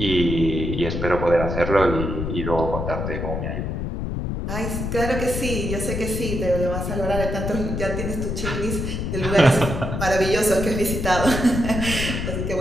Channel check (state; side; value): noise; left; rumble, 3 dB below the sound